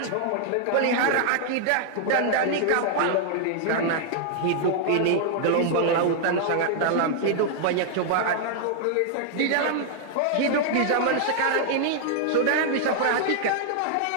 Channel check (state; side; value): different; both; correlation -0.01